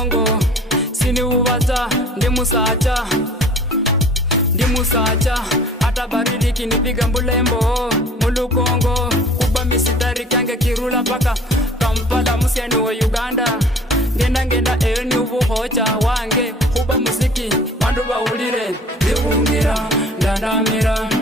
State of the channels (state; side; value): normal; both; correlation 0.48